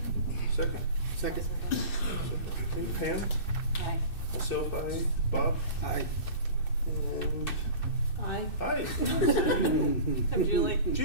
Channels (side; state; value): right; late; 2.6 ms